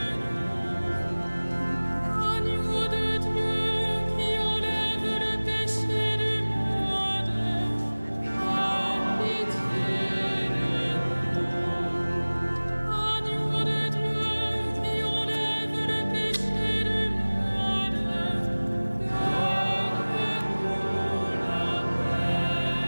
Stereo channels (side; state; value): both; inverted; correlation -1.00